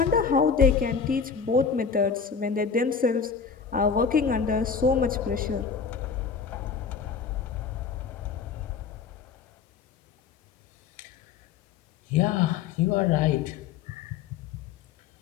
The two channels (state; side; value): quieter; right; 6.1 dB